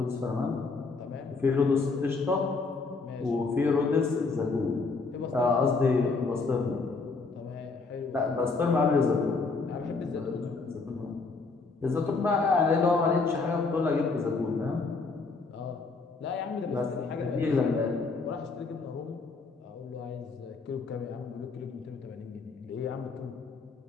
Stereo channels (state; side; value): quieter; right; 4.1 dB